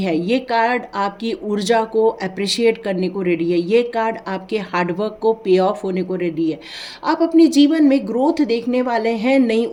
है, ये कार्ड आपकी ऊर्जा को अप्रिशिएट करने को रेडी है, ये कार्ड आपके हार्डवर्क को पे ऑफ होने को रेडी है। आप अपने जीवन में ग्रोथ देखने वाले हैं, नई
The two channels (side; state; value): both; identical; correlation 1.00